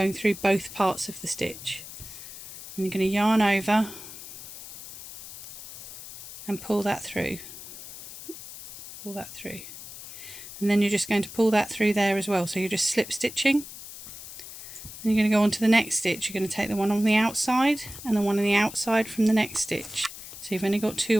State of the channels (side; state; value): left; noise; hiss, 13 dB below the sound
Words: through both parts of the stitch. And you're going to yarn over and pull that through. Pull that through. And then you're just going to pull that through there as well. So you're just slip stitching. And you're going to go on to the next stitch. You're going to take the one on the outside and the one on the outside from the next stitch. So you've only got